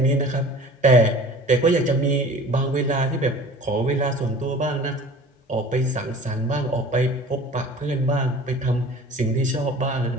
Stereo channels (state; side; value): normal; both; correlation 0.44